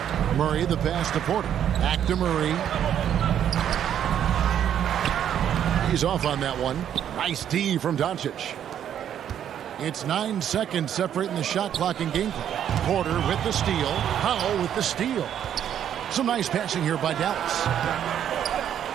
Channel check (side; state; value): left; quieter; 9.8 dB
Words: Murray, the pass to Porter. Back to Murray. He's off on that one. Nice D from Doncic. It's 9 seconds separating the shot clock and game clock. Porter with the steal. Powell with the steal. Some nice passing here by Dallas.